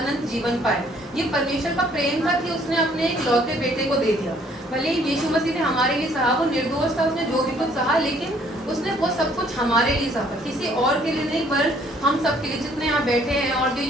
जीवन पाए। ये परमेश्वर का प्रेम था कि उसने अपने इकलौते बेटे को दे दिया। भले यीशु मसीह ने हमारे लिए सहा, वो निर्दोष था, उसने जो भी कुछ सहा, लेकिन उसने वो सब कुछ हमारे लिए सहा, किसी और के लिए नहीं, पर हम सब के लिए, जितने यहाँ बैठे हैं और जो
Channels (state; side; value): normal; both; correlation 0.62